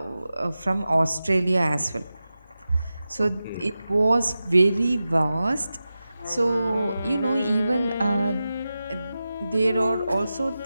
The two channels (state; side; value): inverted; both; correlation -0.93